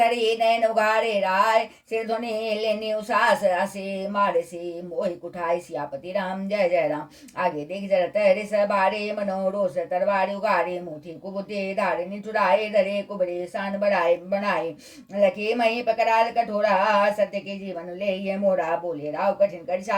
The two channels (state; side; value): identical; both; correlation 1.00